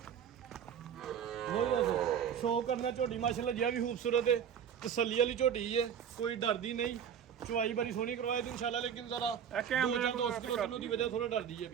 ਬਹੁਤ ਬਸ ਸ਼ੌਕ ਕਰਨਾ ਝੋਟੀ ਮਾਸ਼ਾਅੱਲਾ ਜੀ ਵੀ ਖੂਬਸੂਰਤ ਹੈ ਤਸੱਲੀ ਵਾਲੀ ਝੋਟੀ ਹੈ ਕੋਈ ਡਰਦੀ ਨਹੀਂ ਚੁਆਈ ਬੜੀ ਸੋਹਣੀ ਕਰਵਾਏ ਤੇ ਇਨਸ਼ਾਅੱਲਾ ਲੇਕਿਨ ਜ਼ਰਾ ਦੋ ਚਾਰ ਦੋਸਤ ਕੋਲੋਂ ਦੀ ਵਜ੍ਹਾ ਥੋੜਾ ਡਰਦੀ ਹੈ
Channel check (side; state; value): left; quieter; 8.3 dB